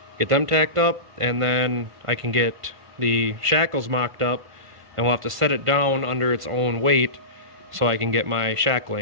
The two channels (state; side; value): late; left; 1.5 ms